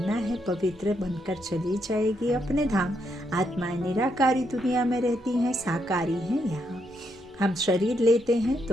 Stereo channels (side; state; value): both; normal; correlation 0.78